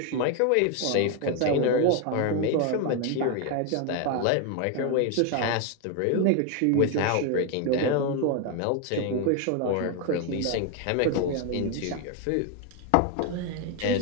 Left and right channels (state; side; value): different; both; correlation 0.01